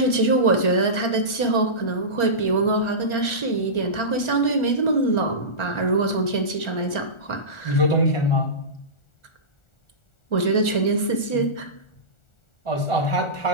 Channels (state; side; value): late; right; 1.4 ms